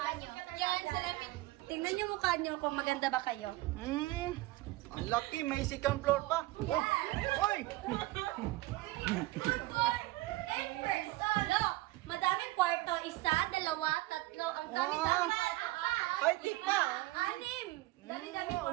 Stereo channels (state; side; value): quieter; left; 19.0 dB